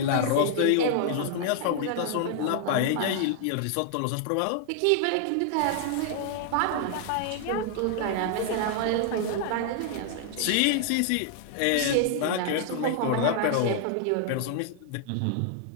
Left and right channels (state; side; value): different; both; correlation 0.00